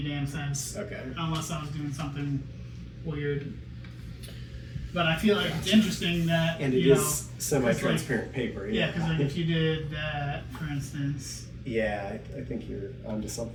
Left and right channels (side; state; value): both; identical; correlation 1.00